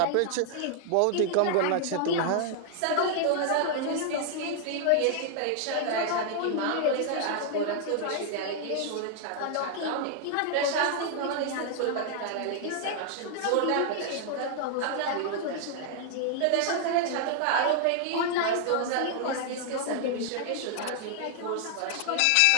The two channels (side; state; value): both; different; correlation 0.00